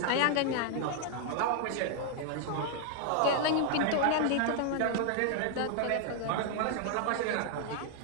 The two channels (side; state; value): both; different; correlation 0.00